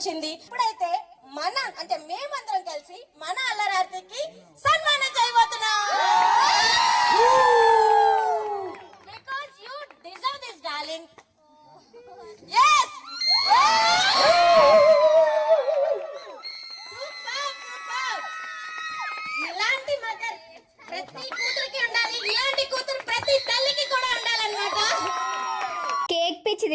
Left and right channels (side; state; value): both; identical; correlation 1.00